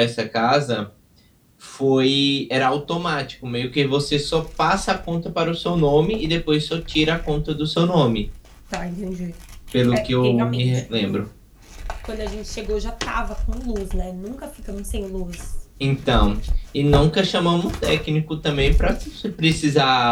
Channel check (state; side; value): identical; both; correlation 1.00